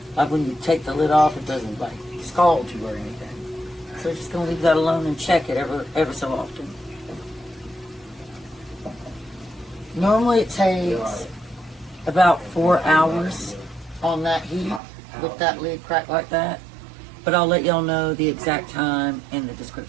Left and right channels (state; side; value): drops out; left; at 14.8 s